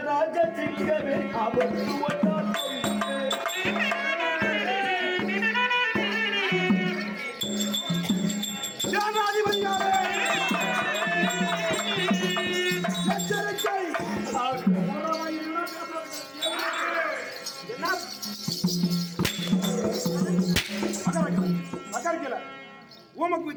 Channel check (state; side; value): identical; both; correlation 1.00